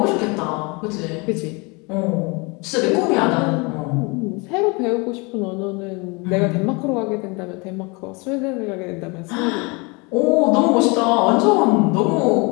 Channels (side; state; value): right; quieter; 28.7 dB